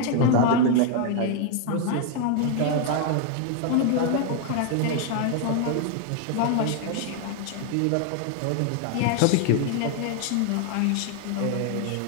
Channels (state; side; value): different; both; correlation 0.00